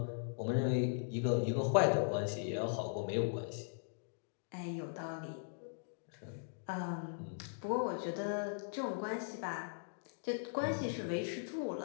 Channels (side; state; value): right; silent; digital silence